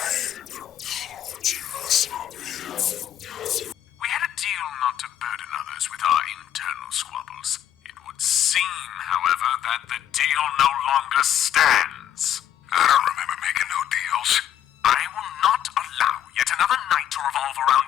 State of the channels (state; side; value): quieter; right; 10.7 dB